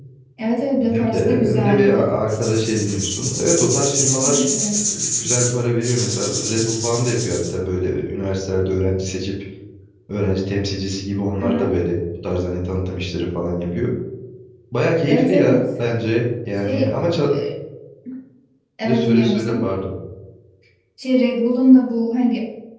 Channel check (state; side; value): identical; both; correlation 1.00